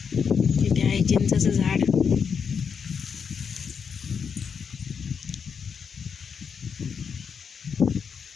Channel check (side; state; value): right; quieter; 6.5 dB